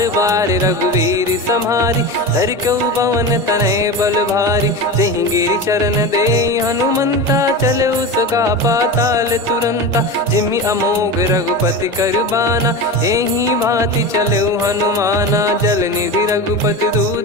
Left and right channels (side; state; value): both; normal; correlation 0.25